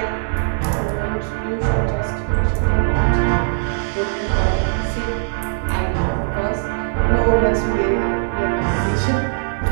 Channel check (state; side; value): silent; left; 57 dB below the other